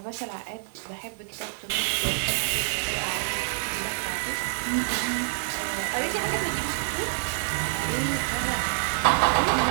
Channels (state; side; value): silent; left; digital silence